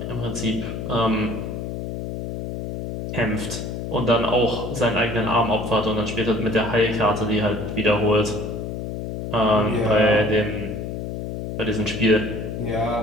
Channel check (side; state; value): left; noise; hum, 6 dB below the sound